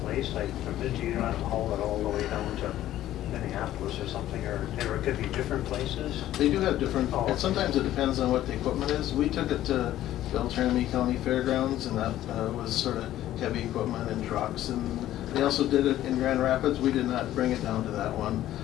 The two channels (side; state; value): right; quieter; 13.4 dB